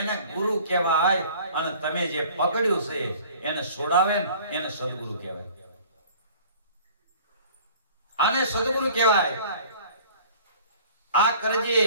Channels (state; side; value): inverted; both; correlation -0.49